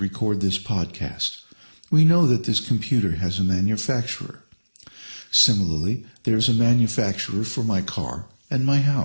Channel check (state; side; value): inverted; both; correlation -1.00